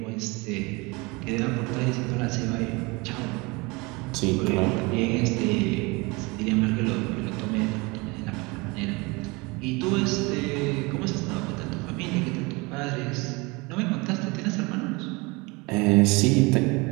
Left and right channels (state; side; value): quieter; left; 25.9 dB